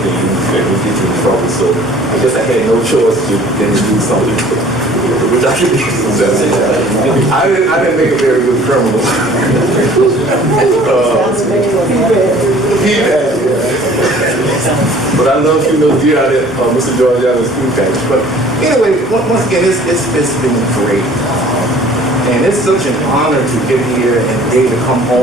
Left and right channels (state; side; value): normal; both; correlation 0.51